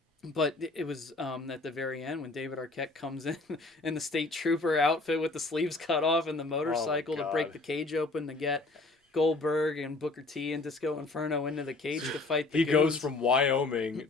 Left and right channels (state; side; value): quieter; right; 3.3 dB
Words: But it was at the very end when David Arquette comes in the state trooper outfit with the sleeves cut off and the motorcycle to break the cage open to get Goldberg and Booker T and Disco Inferno into the cage to fight the He goons. goes from Wyoming